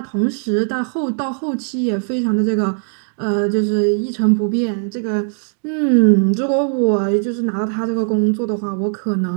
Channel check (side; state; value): left; silent; 56 dB below the other